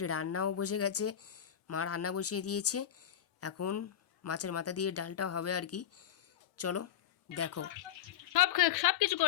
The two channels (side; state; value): right; quieter; 10.1 dB